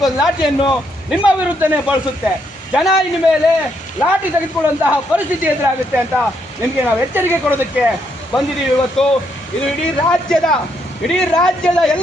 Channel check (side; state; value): both; normal; correlation 0.75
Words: ಲಾಠಿಯನ್ನು ನಿಮ್ಮ ವಿರುದ್ಧನೇ ಬಳಸುತ್ತೆ. ಜನ ಇನ್ನು ಮೇಲೆ ಲಾಠಿ ತೆಗೆದುಕೊಳ್ಳುವಂತಹ ಪರಿಸ್ಥಿತಿ ಎದುರಾಗುತ್ತೆ ಅಂತ ನಿಮಗೆ ನಾವು ಎಚ್ಚರಿಕೆ ಕೊಡೋದಕ್ಕೆ ಬಂದಿದ್ದೀವಿ ಇವತ್ತು. ಇದು ಇಡೀ ರಾಜ್ಯದ